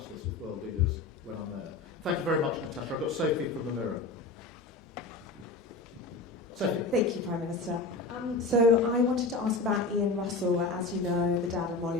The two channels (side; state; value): right; quieter; 3.4 dB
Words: this with world leaders when I'm there. Thank you very much, Natasha. I've got Sophie from the Mirror. Sophie. Thank you, Prime Minister. So I wanted to ask about Ian Russell. As you know, the dad of